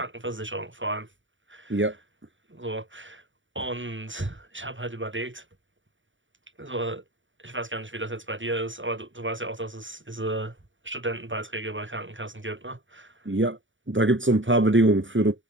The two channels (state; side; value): late; left; 0.56 ms